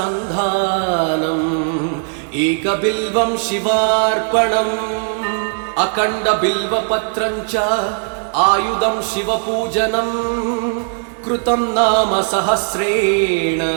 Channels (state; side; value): silent; left; 56 dB below the other